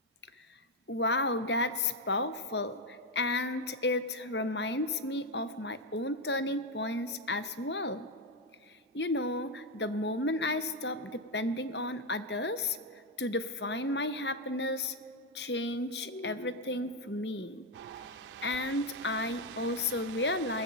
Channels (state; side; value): normal; both; correlation 0.06